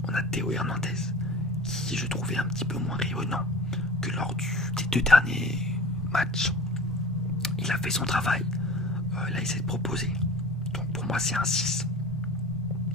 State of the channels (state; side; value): normal; both; correlation 0.40